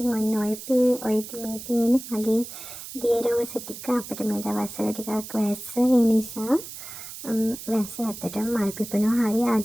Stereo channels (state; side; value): noise; right; hiss, 12 dB below the sound